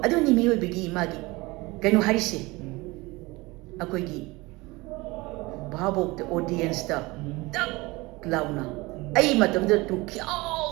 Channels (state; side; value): quieter; left; 22.6 dB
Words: نيميو بيجي ماجي. كانوا هاريسي. أكويجي. भावोक्त ऑडियंस ता तक लाउना आई मतम द तु